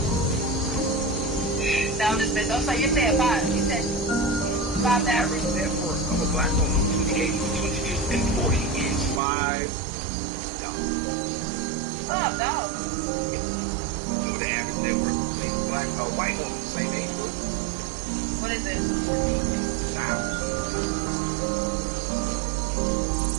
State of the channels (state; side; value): drops out; left; at 9.2 s